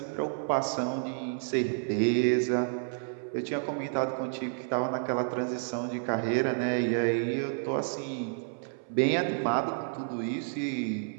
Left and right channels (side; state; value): left; silent; 58 dB below the other